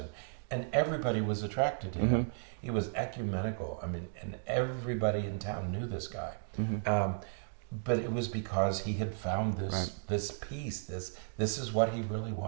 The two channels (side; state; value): left; silent; digital silence